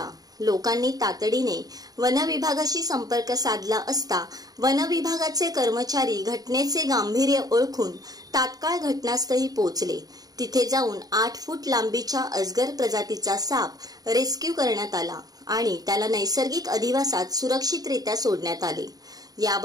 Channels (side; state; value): left; late; 0.18 ms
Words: लोकांनी तातडीने वनविभागाशी संपर्क साधला असता वनविभागाचे कर्मचारी घटनेचे गांभीर्य ओळखून तात्काळ घटनास्थळी पोहोचले। तिथे जाऊन 8 फूट लांबीच्या अजगर प्रजातीचा साप रेस्क्यू करण्यात आला आणि त्याला नैसर्गिक अधिवासात सुरक्षितरित्या सोडण्यात आले।